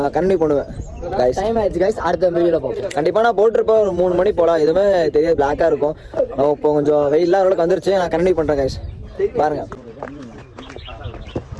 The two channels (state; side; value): identical; both; correlation 1.00